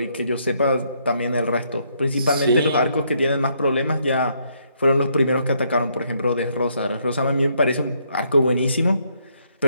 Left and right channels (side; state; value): both; inverted; correlation -0.72